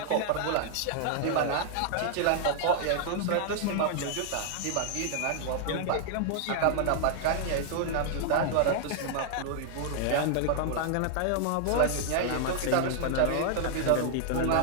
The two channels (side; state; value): both; different; correlation 0.00